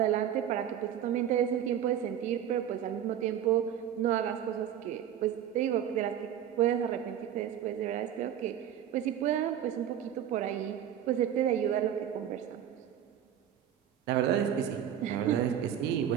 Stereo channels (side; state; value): left; quieter; 10.0 dB